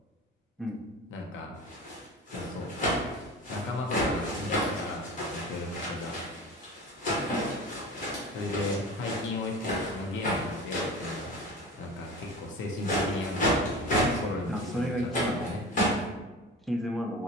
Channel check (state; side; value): normal; both; correlation 0.34